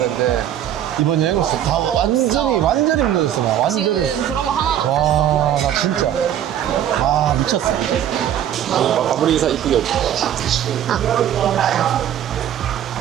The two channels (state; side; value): quieter; left; 10.6 dB